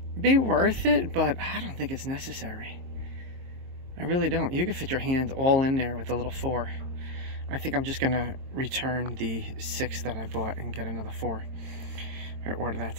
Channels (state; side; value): late; left; 22 ms